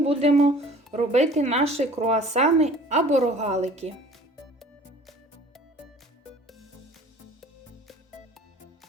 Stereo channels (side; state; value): both; normal; correlation 0.48